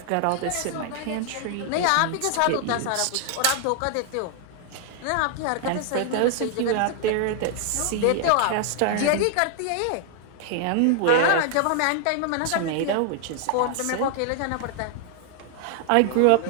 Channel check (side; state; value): both; different; correlation 0.00